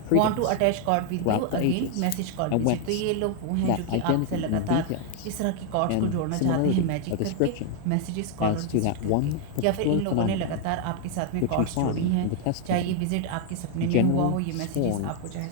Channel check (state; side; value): different; both; correlation 0.00